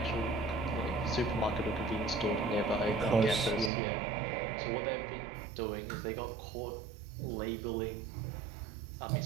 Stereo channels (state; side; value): drops out; left; at 3.7 s